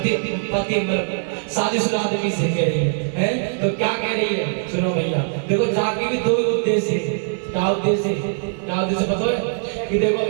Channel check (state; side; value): silent; left; 64 dB below the other